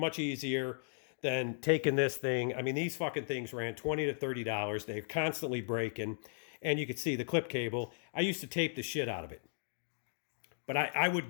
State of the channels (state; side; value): silent; right; digital silence